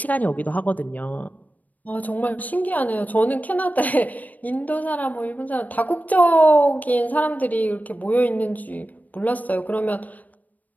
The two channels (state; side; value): late; right; 0.078 ms